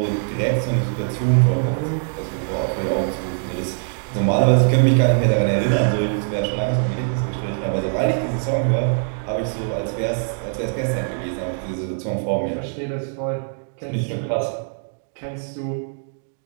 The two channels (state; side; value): silent; left; digital silence